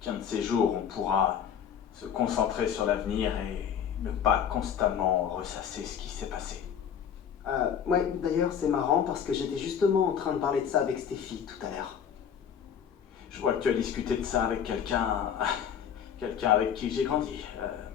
qu'un de ces jours, on pourra se concentrer sur l'avenir et ne pas constamment ressasser ce qui s'est passé. Ouais, d'ailleurs, c'est marrant parce que j'étais justement en train de parler de ça avec Stéphie tout à l'heure. Je vois que tu as discuté de ça avec quelqu'un... quelqu'un avec qui j'ai grandi.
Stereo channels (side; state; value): right; quieter; 8.3 dB